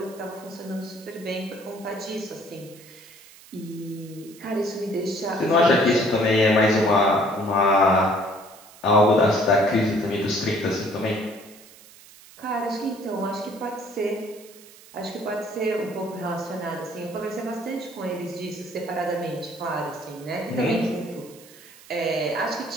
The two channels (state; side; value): noise; right; hiss, 22 dB below the sound